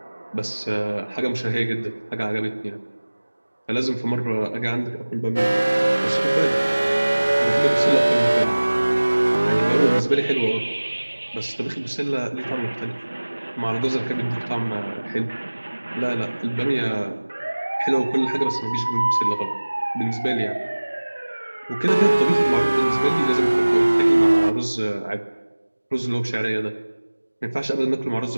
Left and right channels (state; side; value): inverted; both; correlation -1.00